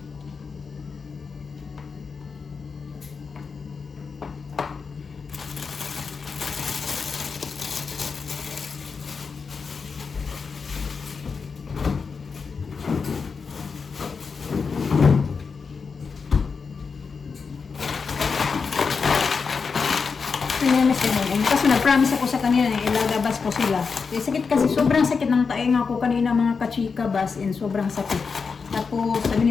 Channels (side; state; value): right; quieter; 5.2 dB